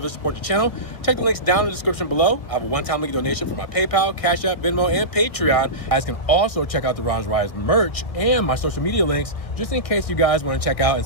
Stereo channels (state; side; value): late; right; 1.6 ms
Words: support the channel, check the links down in the description below. I have a one-time link donation for my PayPal, Cash App, Venmo, and Patreon. You guys can also check out the Ron's Rides merch and my social media links, just in case you guys want to check out and